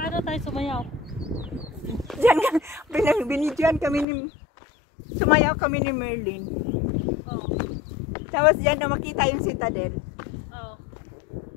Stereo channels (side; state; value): right; drops out; at 4.0 s